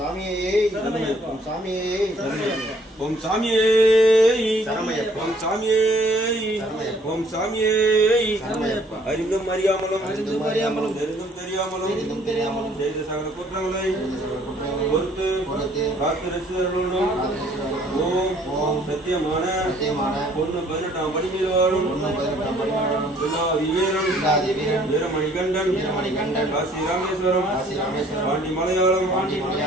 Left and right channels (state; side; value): normal; both; correlation 0.60